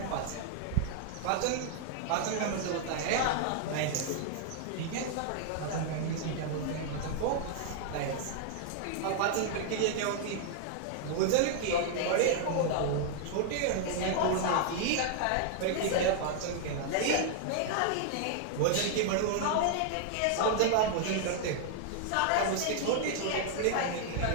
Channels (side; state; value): both; different; correlation -0.01